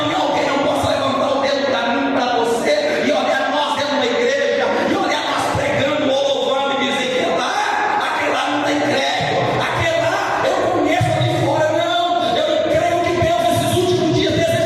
alguém não possa levantar o dedo para mim, para você, e olhar nós dentro da igreja, e olhar nós pregando ou louvando e dizer que aquele lá não tem crédito, aquele lá eu conheço ali fora. Não, eu creio que Deus nesses últimos dias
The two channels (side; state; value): both; identical; correlation 1.00